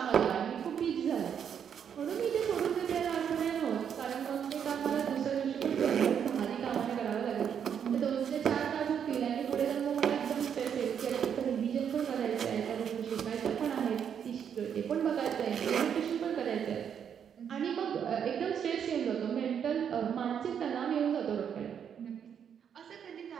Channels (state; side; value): quieter; left; 8.1 dB